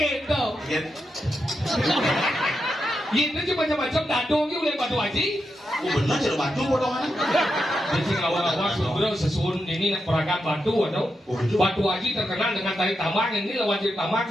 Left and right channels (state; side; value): normal; both; correlation 0.86